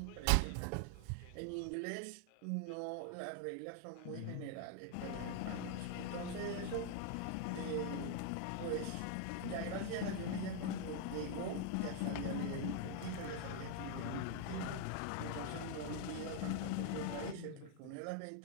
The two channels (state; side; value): different; both; correlation 0.00